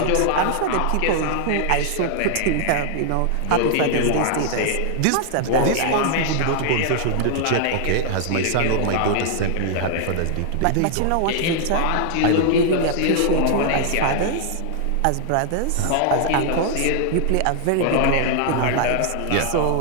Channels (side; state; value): both; different; correlation 0.00